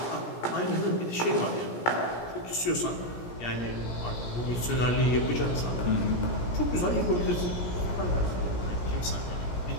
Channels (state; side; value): late; right; 17 ms